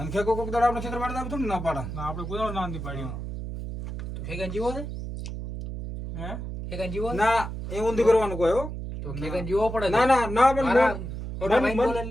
ખેગો કોક દાડા આપણે ક્ષેત્ર પાડતા આપણે થોડું ના પાડા ના આપણે કોઈ ના નથી પાડ્યું તો ખેગન જીવો છે હે ખેગન જીવો ના એ ઊંધી કરવાનું કોઈ હો તો ખેગન જીવો પડે ના ના ના મારા મોટા ભાઈ બોલે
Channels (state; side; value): noise; right; hum, 7 dB below the sound